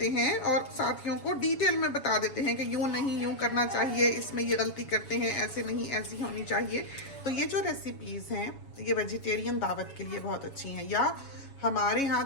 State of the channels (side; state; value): right; late; 7.2 ms